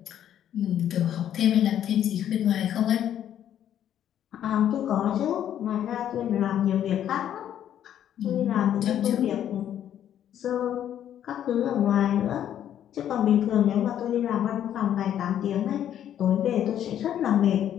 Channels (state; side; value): quieter; right; 10.5 dB